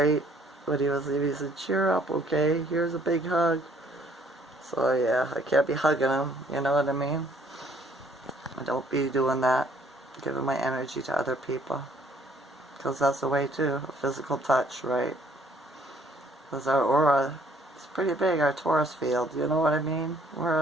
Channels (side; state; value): both; normal; correlation 0.62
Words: But he said, cheer up, okay? Here's a big hug. So yeah, I can't be hugging him, you know what I mean? I don't be doing that, giving my energy to other people. Because that's a way too, a physical touch, right? Because our aura is pretty big, our Taurus field, you know what I mean? We're